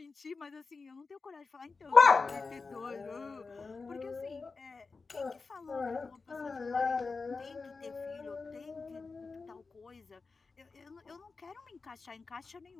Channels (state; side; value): quieter; right; 4.3 dB